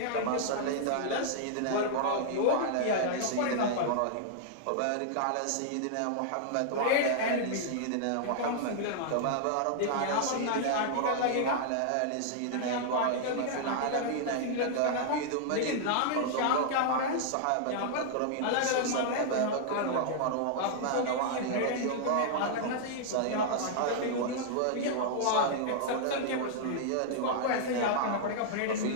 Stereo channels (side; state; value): both; different; correlation -0.01